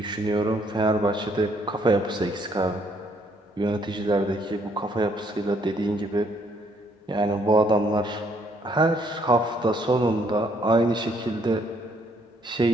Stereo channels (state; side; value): normal; both; correlation 0.68